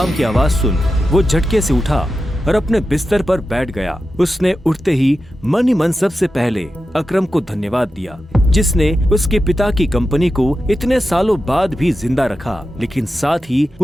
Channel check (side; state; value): both; normal; correlation 0.91